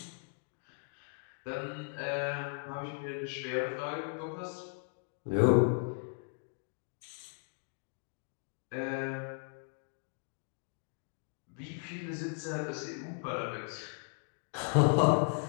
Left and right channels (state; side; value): silent; right; 53 dB below the other